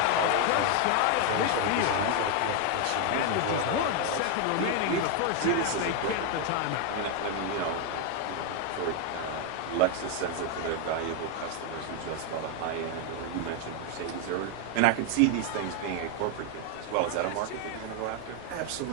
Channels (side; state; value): both; different; correlation 0.01